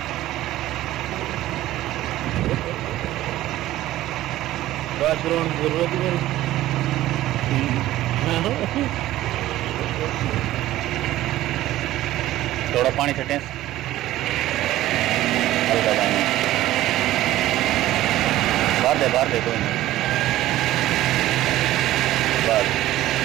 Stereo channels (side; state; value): left; quieter; 15.0 dB